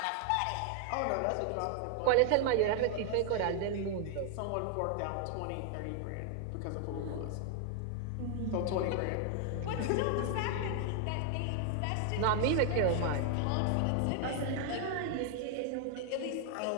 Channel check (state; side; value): different; both; correlation 0.00